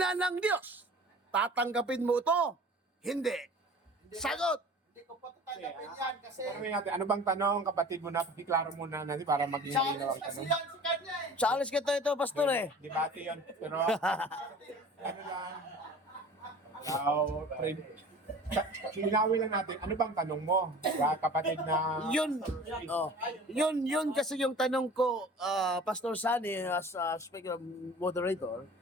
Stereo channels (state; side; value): normal; both; correlation 0.43